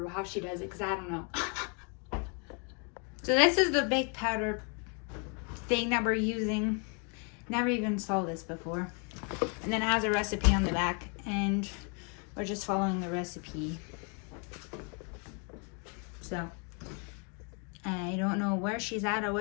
how she does it because I don't know. So this is the baked powder thing that we're using. Never even saw this before. And then it has a recipe on the back and we're just following the recipe. So I don't know where she's at or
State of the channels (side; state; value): right; quieter; 37.1 dB